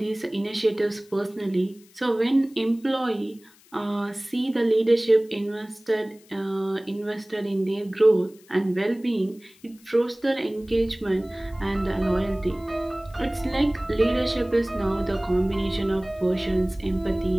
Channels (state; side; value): noise; left; hiss, 28 dB below the sound